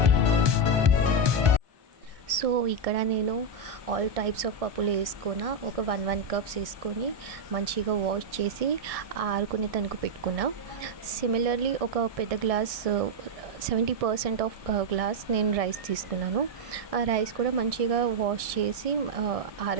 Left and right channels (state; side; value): late; left; 1.6 ms